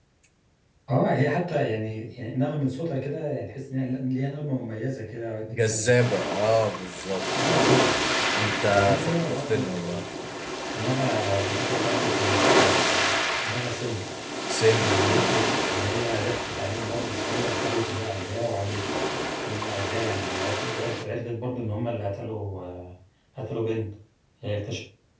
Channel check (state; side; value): identical; both; correlation 1.00